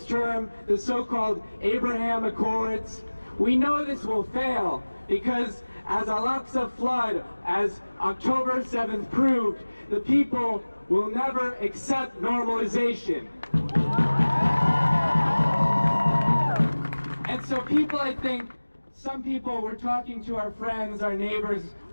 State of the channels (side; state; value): both; inverted; correlation -1.00